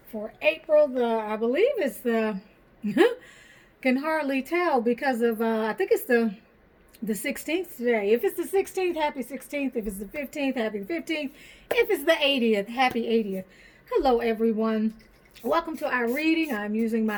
for April. I believe it's the, can hardly tell because of, I think it's the 16th today. If it's the 16th, happy 16th. If it's the 15th, happy 15th. If it's the 80th, happy 80th. Hello, everyone. Welcome to our reading. I'm using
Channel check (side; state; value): both; identical; correlation 1.00